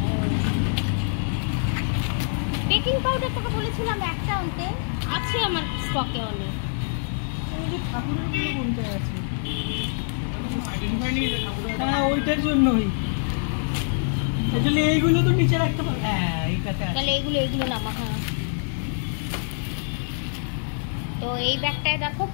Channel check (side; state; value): right; silent; digital silence